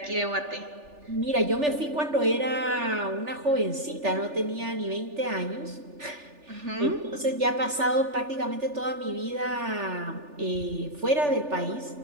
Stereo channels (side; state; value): left; late; 3.4 ms